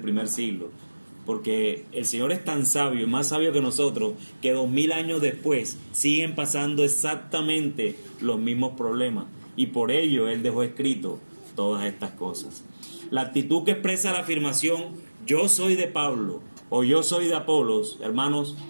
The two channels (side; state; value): both; inverted; correlation -1.00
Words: siglo. Porque el Señor es tan sabio, más sabio que nosotros, que 2000 años después siguen pasando exactamente los mismos problemas. Y por ello Él dejó escrito todas estas cosas. La actitud que expresa la afirmación yo soy de Pablo o yo soy de Apolos, hermanos,